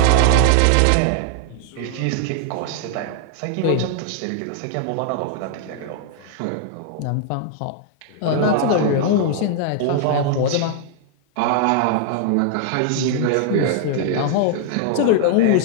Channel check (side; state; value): both; different; correlation 0.00